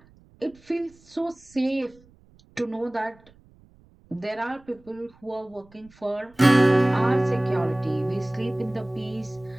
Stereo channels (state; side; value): noise; right; rumble, 28 dB below the sound